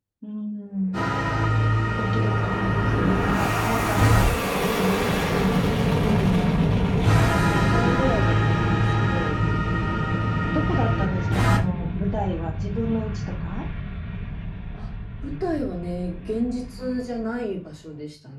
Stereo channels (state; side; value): identical; both; correlation 1.00